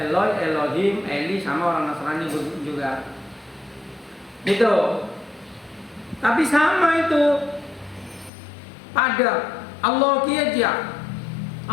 Elohim, Eli, sama orang Nasrani juga. Gitu. Tapi sama itu. Ada Allah kiaja.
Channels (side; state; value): right; drops out; at 8.3 s